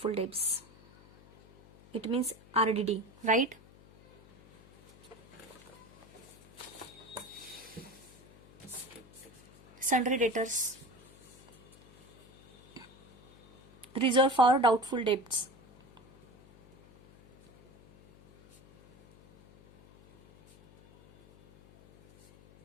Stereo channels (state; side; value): noise; left; hum, 25 dB below the sound